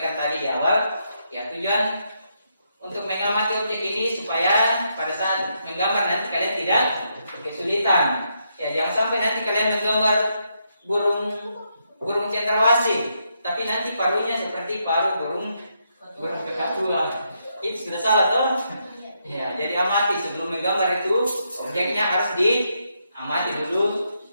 tadi di awal, ya tujuan untuk mengamati objek ini supaya pada saat menggambar nanti kalian tidak kesulitan. Ya, jangan sampai nanti kalian menggambar burung cendrawasih, tapi nanti paruhnya seperti paruh burung kakatua. Itu sudah salah toh? Ya, jadi amati sebelum menggambar itu objeknya harus diamati dulu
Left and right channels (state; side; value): inverted; both; correlation -0.79